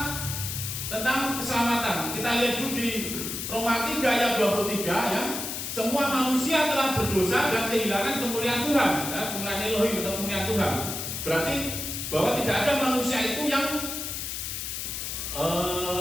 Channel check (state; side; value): noise; left; hiss, 5 dB below the sound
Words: tentang keselamatan. Kita lihat dulu di Roma 3 ayat 23 ya. Semua manusia telah berdosa dan kehilangan kemuliaan Tuhan, ya, kemuliaan Elohim atau kemuliaan Tuhan. Berarti bahwa tidak ada manusia itu yang